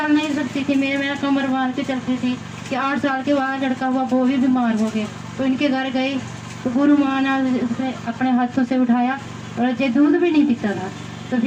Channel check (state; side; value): identical; both; correlation 1.00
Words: नहीं सकती थी, मेरा कमर बांध के चलती थी कि 8 साल के बाद लड़का हुआ, वो भी बीमार हो गए। तो इनके घर गई तो गुरु माँ ने उसे अपने हाथों से उठाया और ये दूध भी नहीं पीता था। तो